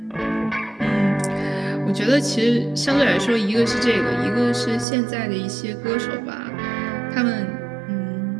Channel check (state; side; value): drops out; left; at 4.9 s